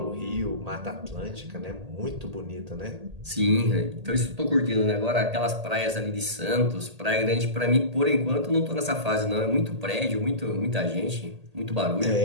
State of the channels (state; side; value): late; left; 1.8 ms